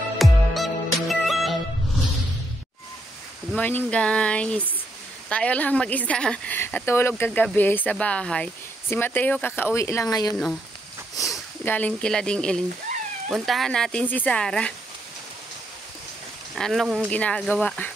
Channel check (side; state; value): both; normal; correlation 0.77